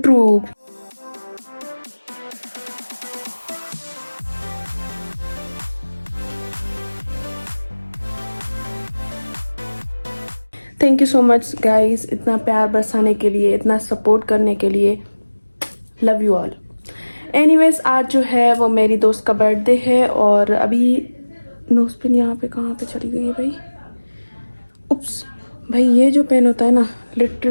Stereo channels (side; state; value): both; inverted; correlation -1.00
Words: Thank you so much guys, इतना प्यार बरसाने के लिए, इतना support करने के लिए. Love you all. Anyways, आज जो है वो मेरी दोस्त का बर्थडे है और अभी नोजपिन यहाँ पे कहाँ पे चली गई है भाई. उप्स भाई, ये जो पेन होता है ना